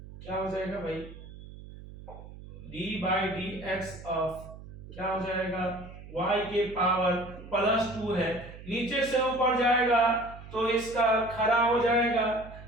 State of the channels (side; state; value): right; noise; hum, 15 dB below the sound